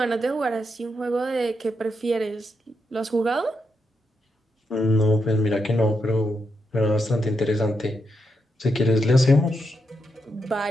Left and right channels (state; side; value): normal; both; correlation 0.83